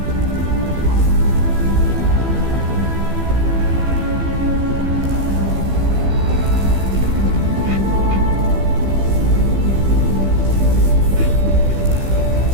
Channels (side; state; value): left; late; 15 ms